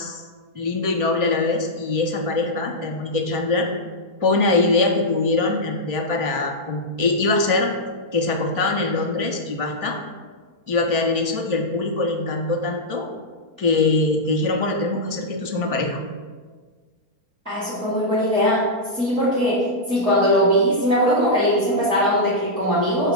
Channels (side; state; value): left; late; 4.3 ms